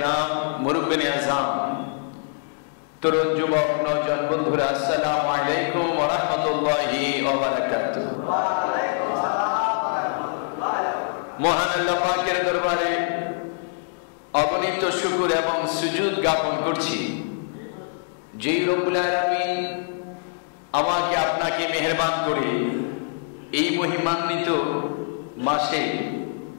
মুরব্বিনে আযম, তরুণ যুবক নওজোয়ান বন্ধুরা, আসসালামু আলাইকুম ওয়া রাহমাতুল্লাহি ওয়া বারাকাতুহু। ওয়া আলাইকুম আসসালাম ওয়া রাহমাতুল্লাহি। মহান আল্লাহ পাকের দরবারে অগণিত শুকর এবং সুজুদ জ্ঞাপন করছি, যেই রব্বুল আলামিন আমাকে আপনাকে মেহেরবান করে এই মহিমান্বিত মাসে,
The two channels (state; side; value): silent; right; digital silence